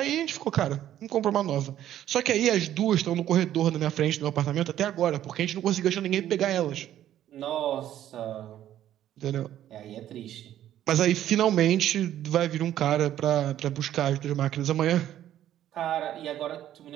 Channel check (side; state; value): left; quieter; 11.9 dB